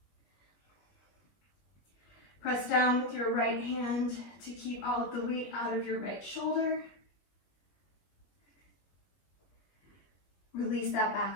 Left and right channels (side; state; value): right; late; 20 ms